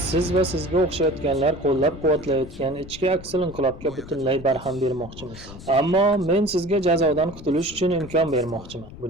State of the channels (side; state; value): left; noise; rumble, 16 dB below the sound